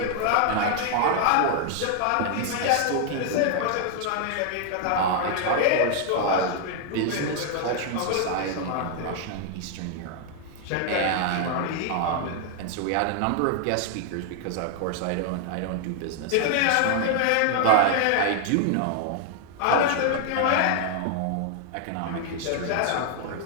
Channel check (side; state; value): both; different; correlation 0.00